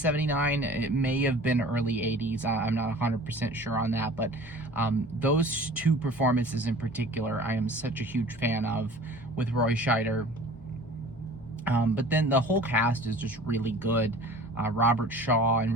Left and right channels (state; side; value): normal; both; correlation 0.44